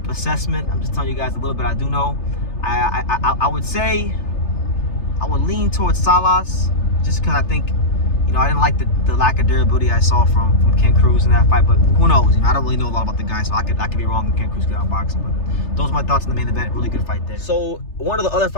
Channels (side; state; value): right; late; 3.3 ms